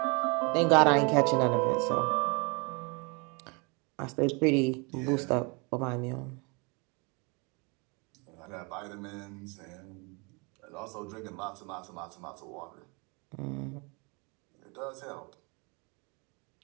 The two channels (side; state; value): left; quieter; 31.0 dB